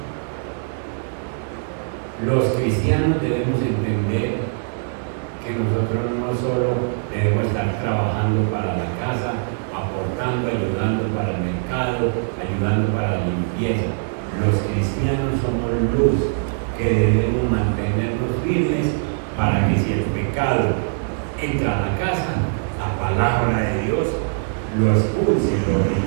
Los cristianos debemos entender que nosotros no solo debemos estar trabajando para la casa, aportando, ayudando para el mercado, ayudando para la limpieza. Los cristianos somos luz que debemos mantenernos firmes para que si el pecado entra a la casa, la palabra de Dios lo expulse, lo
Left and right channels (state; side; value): silent; left; digital silence